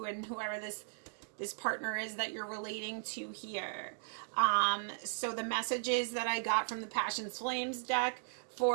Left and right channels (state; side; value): silent; left; digital silence